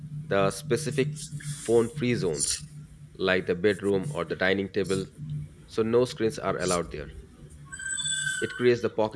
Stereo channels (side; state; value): both; identical; correlation 1.00